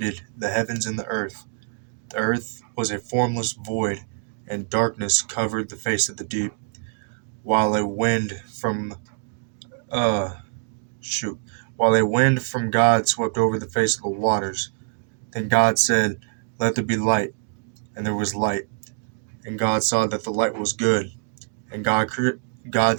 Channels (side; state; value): left; silent; digital silence